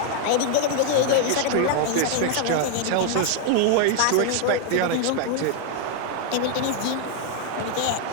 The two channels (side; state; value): both; different; correlation 0.00